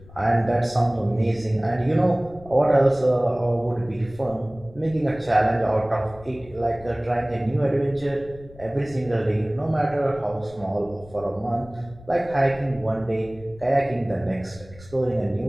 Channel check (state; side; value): noise; left; rumble, 20 dB below the sound